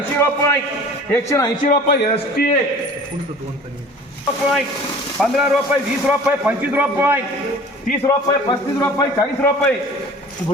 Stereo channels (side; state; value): both; normal; correlation 0.45